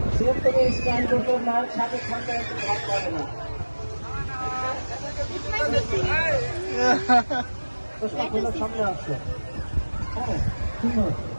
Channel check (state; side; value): inverted; both; correlation -1.00